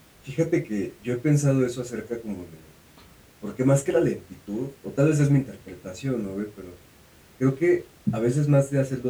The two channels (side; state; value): both; identical; correlation 1.00